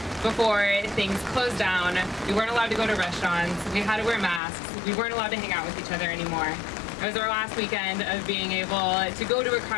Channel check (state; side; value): drops out; right; at 4.4 s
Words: before things closed down. We weren't allowed to go to restaurants. We had to wear masks. We weren't allowed to hang out with each other anymore. It was our last weekend of being able to go to a